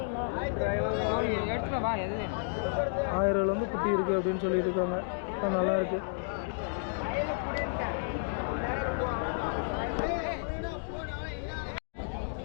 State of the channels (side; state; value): right; silent; digital silence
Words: ரூபாயிலேருந்து குட்டி இருக்குது அப்படின்னு சொல்லிட்டு இருக்காங்க. நல்லா இருக்கு.